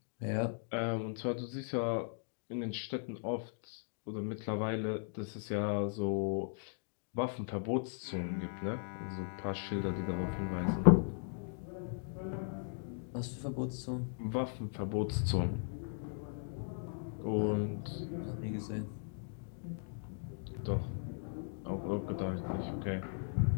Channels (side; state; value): right; silent; digital silence